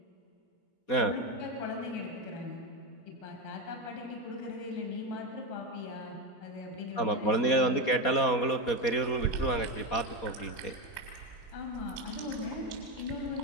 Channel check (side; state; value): right; late; 4.2 ms